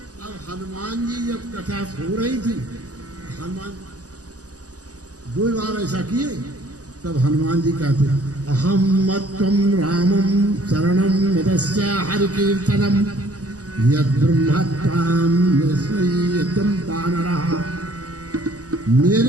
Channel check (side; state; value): left; late; 0.67 ms